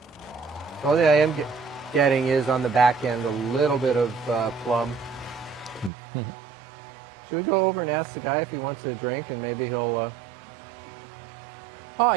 The only thing I am getting is on the back end a little bit of plum. Should we go over and ask the guy if he wants a drink, and maybe he'll... Oh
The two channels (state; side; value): drops out; left; at 5.9 s